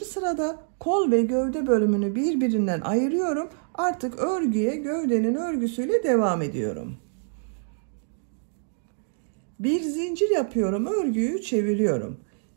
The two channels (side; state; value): left; silent; digital silence